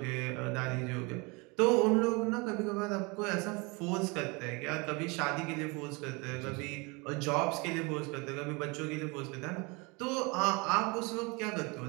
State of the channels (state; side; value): quieter; left; 28.0 dB